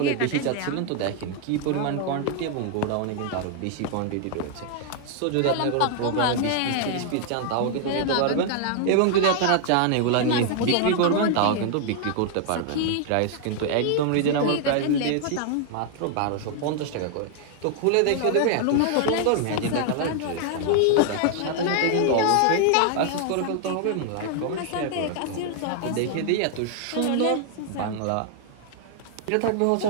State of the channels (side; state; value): both; different; correlation 0.00